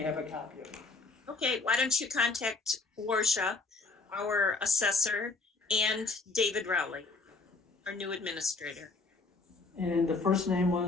have a copy of it? Okay, why don't you contact Warsha, our assessor, and David Rowley, our new administrator. And the first name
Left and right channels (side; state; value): right; quieter; 3.9 dB